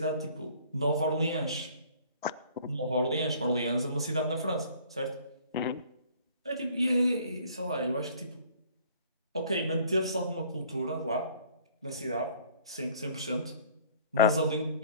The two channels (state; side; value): inverted; both; correlation -0.54